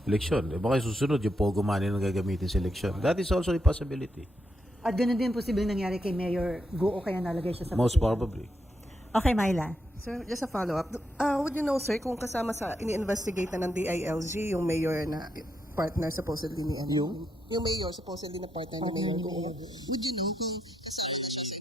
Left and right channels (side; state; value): both; normal; correlation 0.81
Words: eleksyon. Baka susunod yung POGO money na gagamitin sa eleksyon. That is also a possibility. At ganun din posibleng nangyari kay Mayor Go o kaya nalagay siya sa Most position. probably. Okay, Myla. Sir, just a follow-up. Would you know, sir, kung kasama sa ini-investigate na ng DILG yung mayor na partner supposedly ni ano? Yung mayor supposedly na partner ni Mayor Go. Would you know kung kasama siya sa